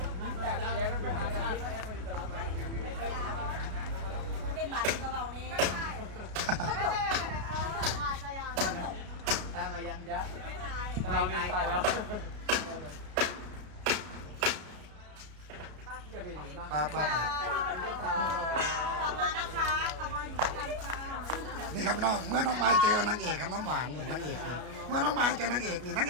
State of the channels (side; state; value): left; late; 33 ms